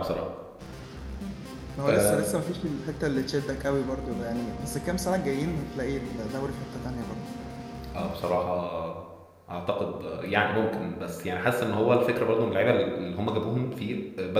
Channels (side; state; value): both; identical; correlation 1.00